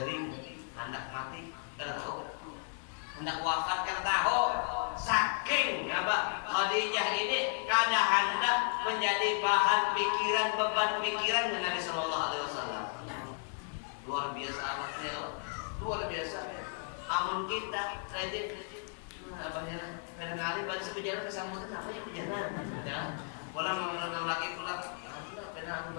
hendak mati karena tahu hendak wafat karena tahu saking apa Khadijah ini kada hendak menjadi bahan pikiran beban pikiran Nabi Sallallahu Alaihi Wasallam. Luar biasa amatnya, luar biasa. Amun kita rajin abahnya kadang-kadang pada sepejalan kesambutan apa ya pejalan ya pulang mengenal lagi pulang karena aku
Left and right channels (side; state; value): right; silent; 55 dB below the other